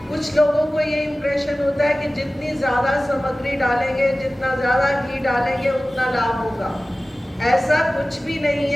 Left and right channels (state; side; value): normal; both; correlation 0.97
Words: कुछ लोगों को ये इंप्रेशन होता है कि जितनी ज़्यादा सामग्री डालेंगे, जितना ज़्यादा घी डालेंगे उतना लाभ होगा। ऐसा कुछ भी नहीं